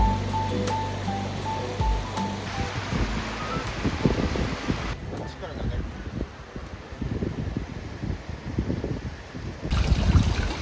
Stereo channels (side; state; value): both; identical; correlation 1.00